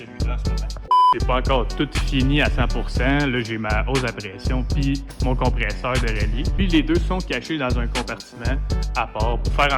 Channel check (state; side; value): identical; both; correlation 1.00